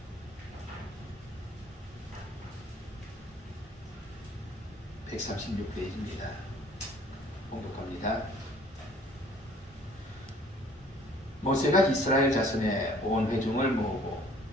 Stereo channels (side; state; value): both; normal; correlation 0.56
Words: (136페이지입니다) 봉독합니다. 모세가 이스라엘 자손의 온 회중을 모으고